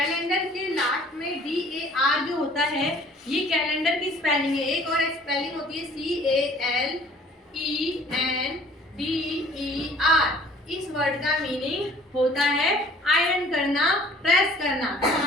के last में DAR जो होता है, ये calendar की spelling है. एक और स्पेलिंग होती है CALENDER. इस वर्ड का मीनिंग होता है आयरन करना, प्रेस करना. तो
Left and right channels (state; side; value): normal; both; correlation 0.53